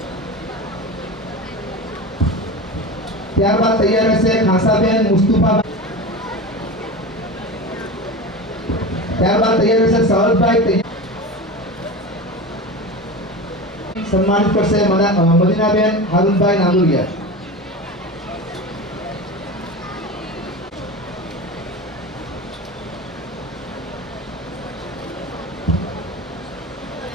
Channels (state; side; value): normal; both; correlation 0.28